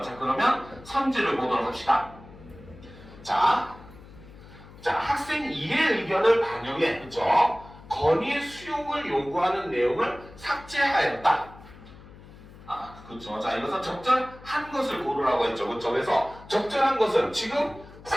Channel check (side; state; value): left; noise; hum, 19 dB below the sound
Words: 자, 그러면 선지를 보도록 합시다. 자, 학생 이해 의견을 반영해, 그쵸? 건의 수용을 요구하는 내용을 삭제하였다. 그렇죠. 자, 이것은 적절한 것을 고르라고 했죠. 그렇죠. 그래서 적절한 것은 지금